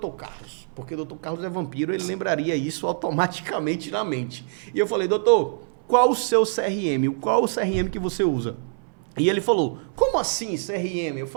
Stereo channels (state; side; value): silent; left; 62 dB below the other